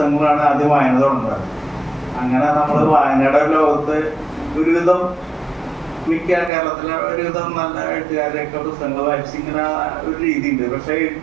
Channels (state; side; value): drops out; left; at 6.5 s